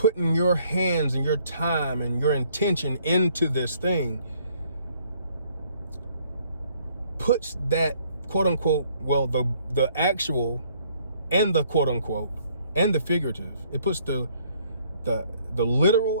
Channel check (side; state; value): both; inverted; correlation -0.63